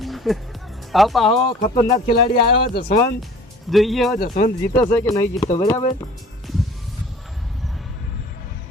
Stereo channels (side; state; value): both; normal; correlation 0.47